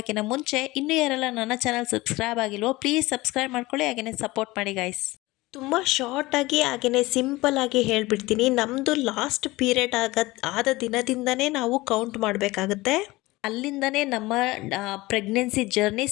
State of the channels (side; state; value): right; quieter; 20.3 dB